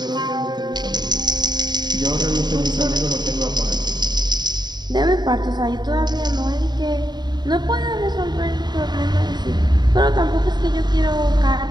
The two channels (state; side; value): late; left; 0.21 ms